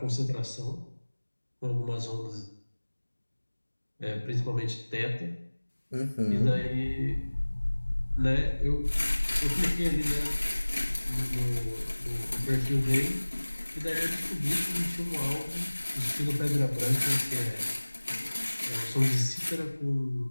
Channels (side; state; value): both; inverted; correlation -1.00